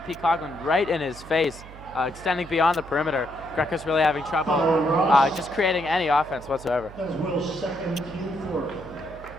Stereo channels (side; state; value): right; noise; hum, 17 dB below the sound